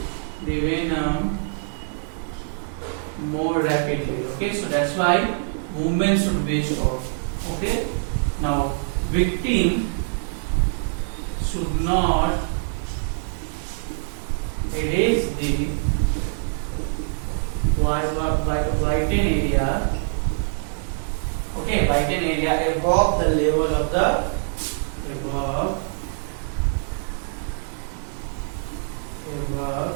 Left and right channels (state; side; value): silent; left; digital silence